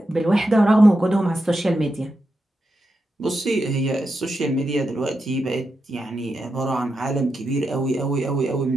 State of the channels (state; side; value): normal; both; correlation 0.87